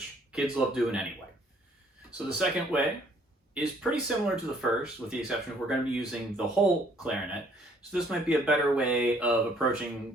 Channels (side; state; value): both; normal; correlation 0.62